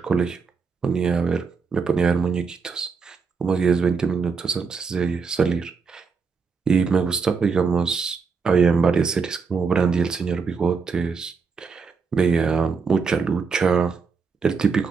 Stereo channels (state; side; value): quieter; left; 5.2 dB